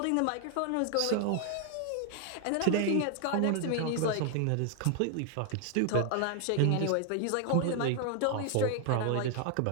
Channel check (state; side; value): different; both; correlation 0.00